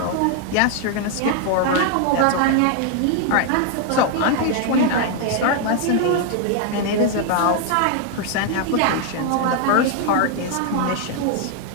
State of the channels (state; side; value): different; both; correlation 0.00